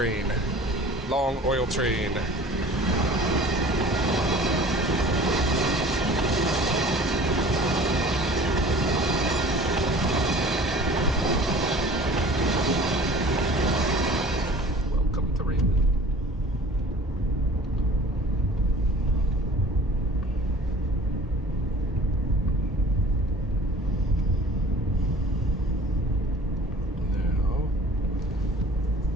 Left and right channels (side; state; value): both; normal; correlation 0.45